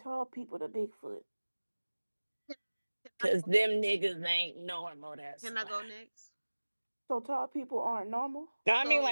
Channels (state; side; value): inverted; both; correlation -1.00